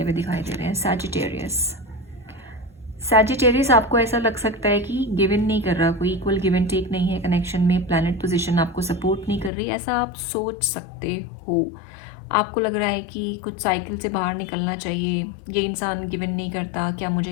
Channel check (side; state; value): right; drops out; at 9.5 s